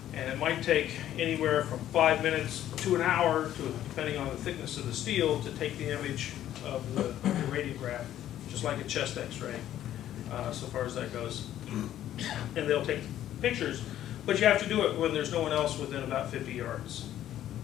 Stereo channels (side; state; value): right; quieter; 12.0 dB